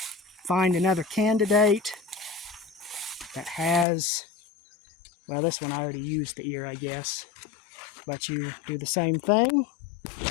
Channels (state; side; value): drops out; right; at 3.9 s